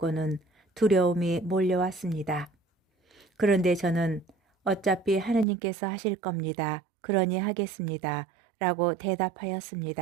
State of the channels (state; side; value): drops out; left; at 5.5 s